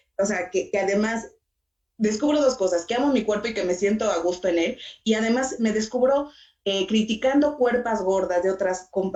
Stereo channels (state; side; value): identical; both; correlation 1.00